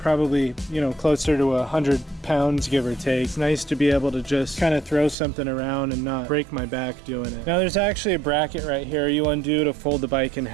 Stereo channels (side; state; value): left; drops out; at 5.2 s